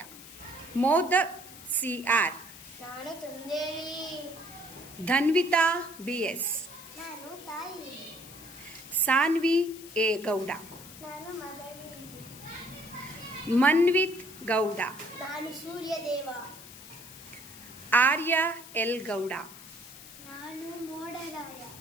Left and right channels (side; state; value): left; noise; hiss, 16 dB below the sound